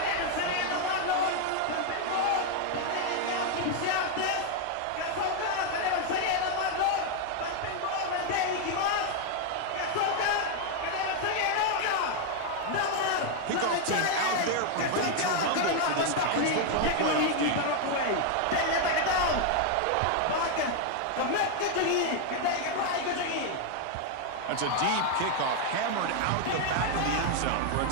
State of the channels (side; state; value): both; different; correlation 0.01